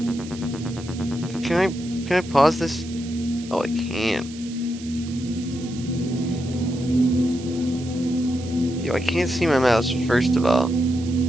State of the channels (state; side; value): noise; right; hiss, 17 dB below the sound